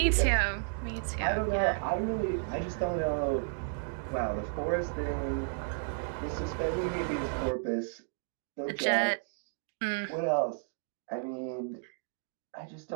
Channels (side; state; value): left; silent; digital silence